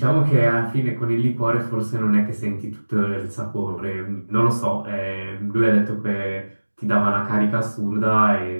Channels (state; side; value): inverted; both; correlation -1.00